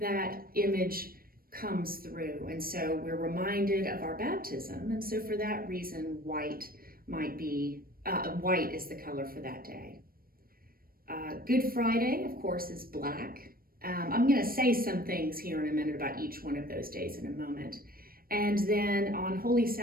image comes through. And so we're reminded of our baptism. And so for that reason, white might be, white is the color for that day. Good Friday, of course, is black. I'm going to say some things here in a minute about each one of those days in a moment. And then on Holy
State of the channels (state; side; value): late; left; 0.43 ms